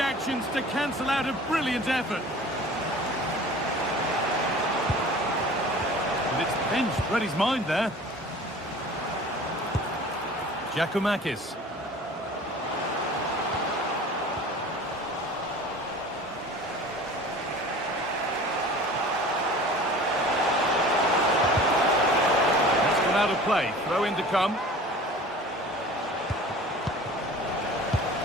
to cancel out a brilliant effort. And it's pinched. Read his mind there. Giacomakis. That's gone out of play. Throw in to come.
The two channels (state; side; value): normal; both; correlation 0.43